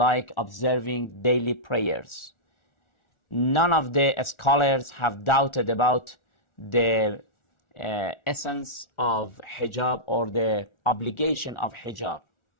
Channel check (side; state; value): right; late; 1.4 ms